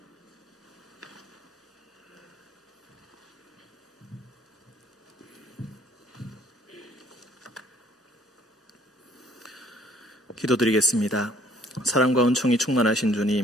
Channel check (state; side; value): normal; both; correlation 0.60